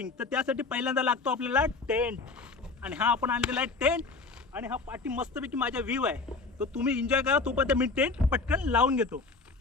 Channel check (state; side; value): quieter; right; 4.0 dB